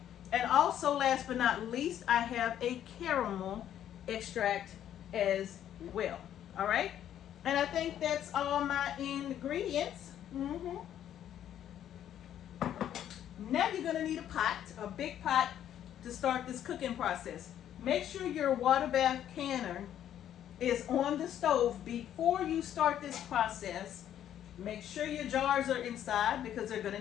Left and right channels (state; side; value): quieter; right; 10.7 dB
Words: And also, last but not least, I have a caramel extract as well, all right? And I think that's all my ingredients. Now you're gonna need a pot, a big pot, to start this cooking process. Make sure your water bath canner is on the stove before you start this process. Make sure your jars are inside because they're gonna